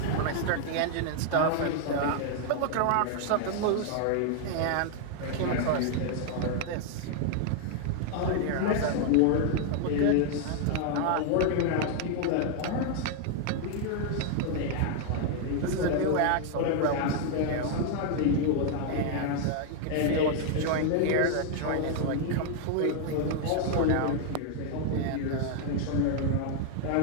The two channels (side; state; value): both; different; correlation 0.00